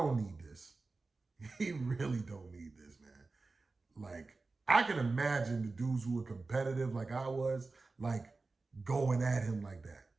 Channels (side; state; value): left; quieter; 3.7 dB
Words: need this. He really don't need this, man. Like, I can imagine the dudes who were competitive like I was, like, going at him like that.